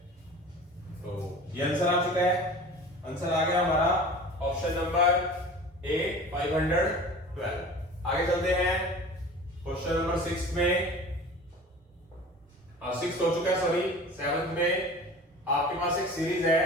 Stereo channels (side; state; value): both; normal; correlation 0.39